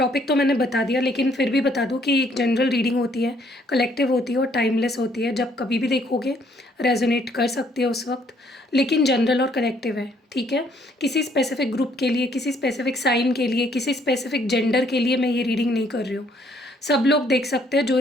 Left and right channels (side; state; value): both; normal; correlation 0.66